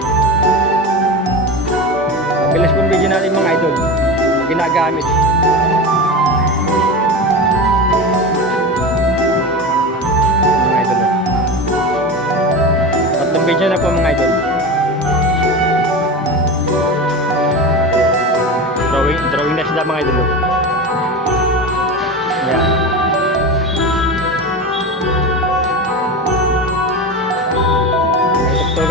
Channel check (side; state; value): both; normal; correlation 0.25